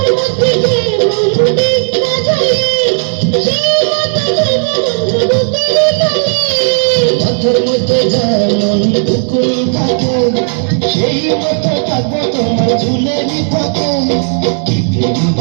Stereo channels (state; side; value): silent; left; digital silence